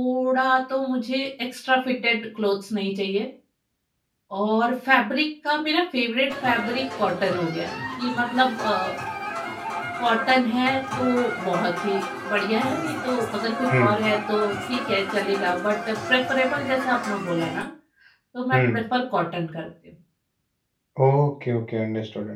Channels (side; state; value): both; identical; correlation 1.00